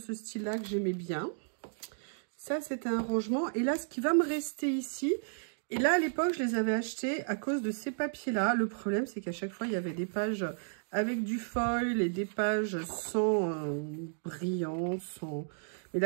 style-là que j'aimais bien. Ça, c'était un rangement. Et là, ce qui va me rester ici, et là, à l'époque, je les avais achetés à cause de ces papiers-là. Le problème, c'est qu'à chaque fois, il y avait des pages avec du foil et des pages sans brillant, sans... Mais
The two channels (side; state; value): left; silent; digital silence